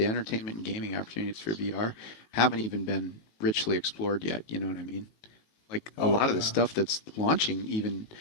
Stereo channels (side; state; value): right; late; 18 ms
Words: entertainment and gaming opportunities for VR haven't even been richly explored yet. You know what I mean? Like a lot of the stuff that's launching even